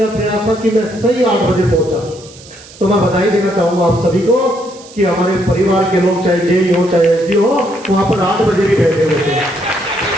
प्रयास था कि मैं सही 8 बजे पहुंचा। तो मैं बधाई देना चाहूंगा आप सभी को कि हमारे परिवार के लोग, चाहे जेई हो चाहे एसडी हो, वहां पर 8 बजे भी बैठे हुए थे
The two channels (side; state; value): right; noise; hiss, 21 dB below the sound